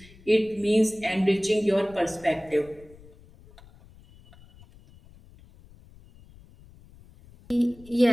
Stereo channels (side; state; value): left; noise; rumble, 24 dB below the sound